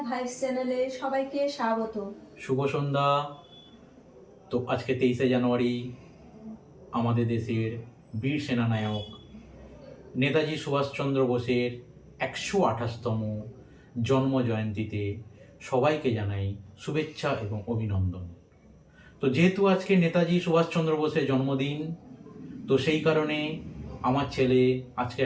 ভাইস চ্যানেলে সবাইকে স্বাগত। শুভ সন্ধ্যা। তো আজকে 23শে জানুয়ারি আমাদের দেশের বীর সেনানায়ক নেতাজি সুভাষচন্দ্র বোসের 128তম জন্ম জয়ন্তীতে সবাইকে জানাই শুভেচ্ছা এবং অভিনন্দন। তো যেহেতু আজকে নেতাজি সুভাষচন্দ্র বোসের জন্মদিন, তো সেই কারণে আমার ছেলে আজকে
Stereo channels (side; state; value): both; identical; correlation 1.00